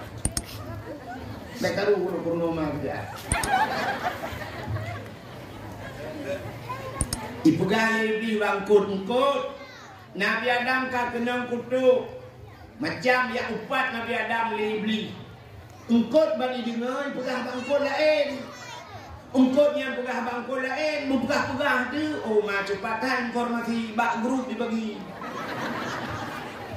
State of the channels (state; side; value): identical; both; correlation 1.00